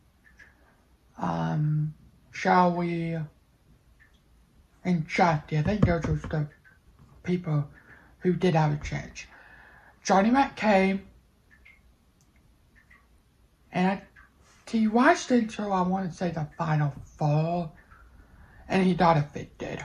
Shall We and Jackie. I think those were the people who did have a chance. Johnny Mac came, and he watched until I want to say the final 4, and he got evicted.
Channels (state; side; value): identical; both; correlation 1.00